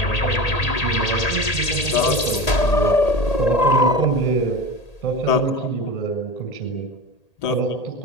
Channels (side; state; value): right; late; 1.8 ms